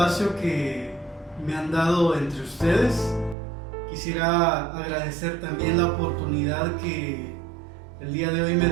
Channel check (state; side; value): drops out; left; at 3.4 s